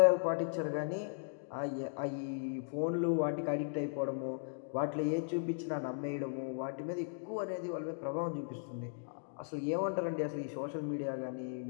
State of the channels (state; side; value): silent; right; digital silence